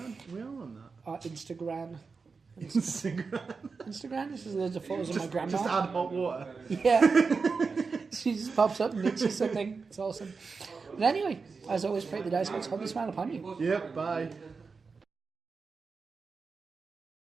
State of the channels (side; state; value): left; quieter; 4.8 dB